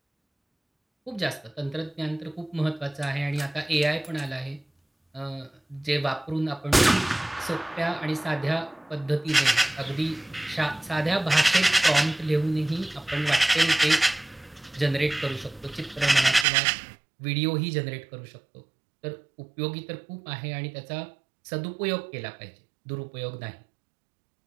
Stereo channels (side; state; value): left; drops out; at 16.4 s